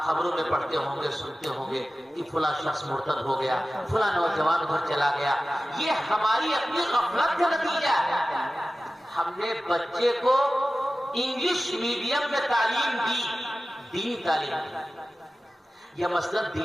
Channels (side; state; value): both; normal; correlation 0.95